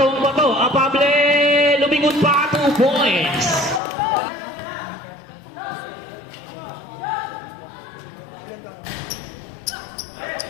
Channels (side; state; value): right; drops out; at 3.8 s